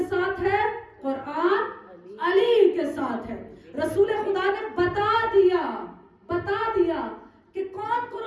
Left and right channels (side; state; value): both; identical; correlation 1.00